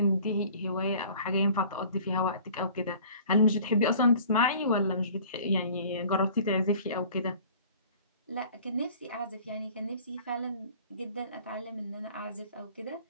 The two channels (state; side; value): inverted; both; correlation -0.48